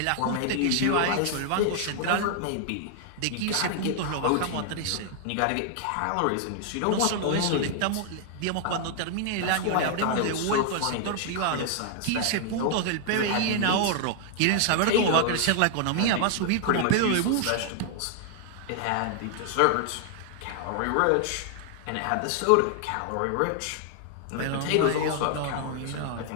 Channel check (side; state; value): both; different; correlation 0.00